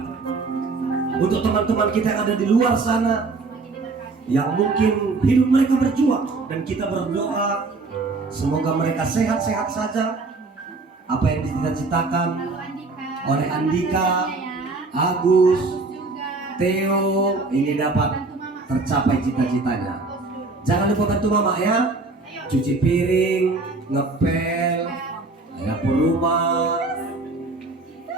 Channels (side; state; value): left; quieter; 3.7 dB